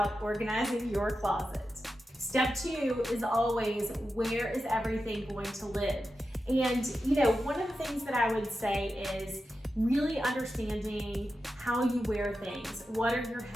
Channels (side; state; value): both; normal; correlation 0.90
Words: organizing your closet. Step 2 is always, where is everything going to live? And one of the things that I would say is really understanding how you wear things. What are your